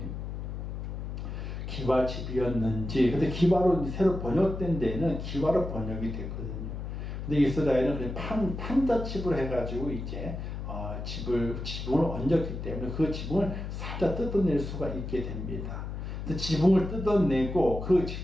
기와집이었는지, 근데 기와로 새로 번역된 데에는 기와로 번역이 됐거든요. 근데 이스라엘은 그냥 판자칩을 해가지고 이제 지붕을 얹었기 때문에 그 지붕을 살짝 뜯어낼 수가 있게 됩니다. 지붕을 뜯어내고 그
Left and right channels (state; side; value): noise; left; hum, 6 dB below the sound